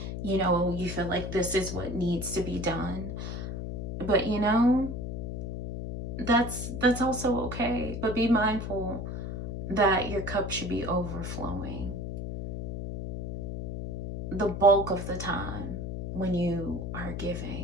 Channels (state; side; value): noise; left; hum, 5 dB below the sound